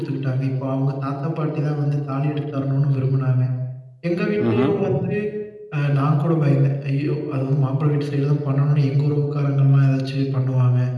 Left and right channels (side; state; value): both; identical; correlation 1.00